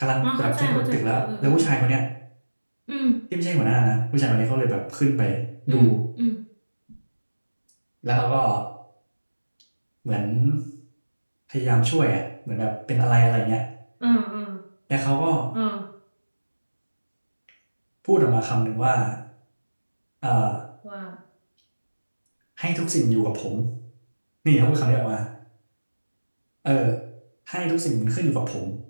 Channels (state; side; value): inverted; both; correlation -1.00